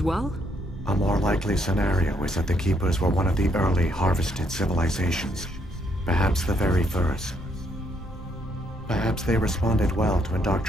well? A more likely scenario is that the Keepers were one of the early harvested civilizations. Perhaps the very first. Perhaps they responded well to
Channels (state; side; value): normal; both; correlation 0.73